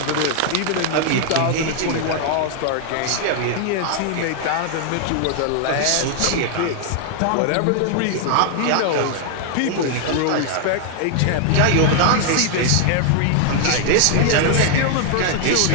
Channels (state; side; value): different; both; correlation 0.00